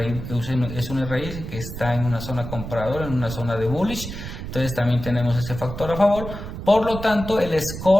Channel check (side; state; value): right; noise; rumble, 9 dB below the sound